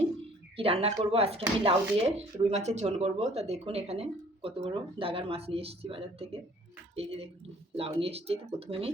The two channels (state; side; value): normal; both; correlation 0.55